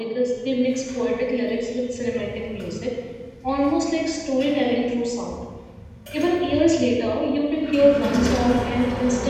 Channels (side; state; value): both; identical; correlation 1.00